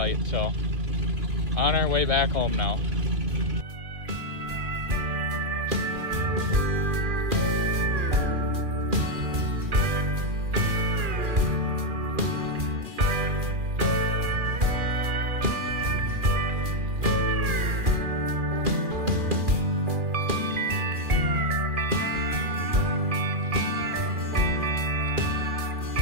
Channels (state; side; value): late; left; 2.4 ms